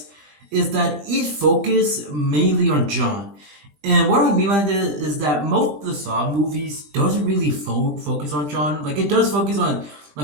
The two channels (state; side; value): late; left; 20 ms